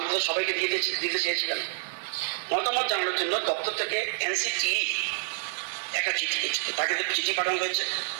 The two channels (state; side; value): silent; left; 59 dB below the other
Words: সবাইকে দিতে চেয়েছিলেন মতামত জানানোর জন্য দপ্তর থেকে এনসিটি একটা চিঠি তাকে চিঠি পাঠানো হয়েছে।